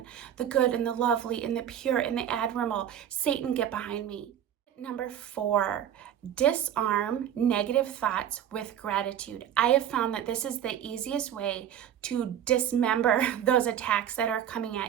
the good and the lovely and the pure and the admirable. Satan, get behind me. Number 4, disarm negative thoughts with gratitude. I have found that this is the easiest way to dismember those attacks that are coming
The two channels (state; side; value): quieter; left; 10.0 dB